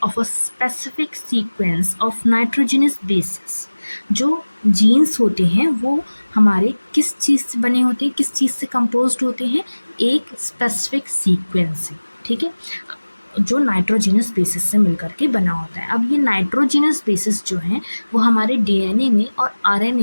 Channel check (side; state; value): both; inverted; correlation -1.00